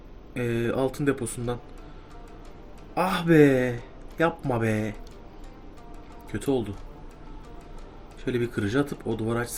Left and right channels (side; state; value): both; identical; correlation 1.00